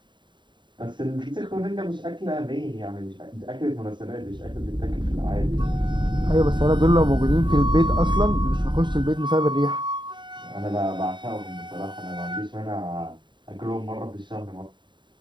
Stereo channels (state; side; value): late; left; 0.23 ms